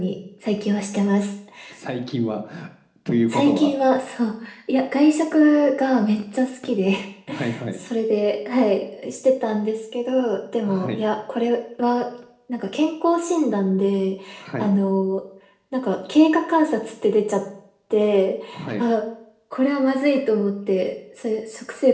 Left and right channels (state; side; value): identical; both; correlation 1.00